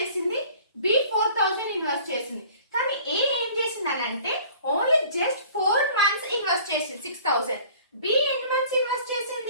బి 4,000 ఇన్వెస్ట్ చేసింది, కానీ ఏ ఏం చేసింది అని అంటే ఓన్లీ జస్ట్ 4 months ఇన్వెస్ట్ చేసింది 6,000. బి ఎన్ని మంత్స్ ఇన్వెస్ట్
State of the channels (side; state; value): both; inverted; correlation -0.49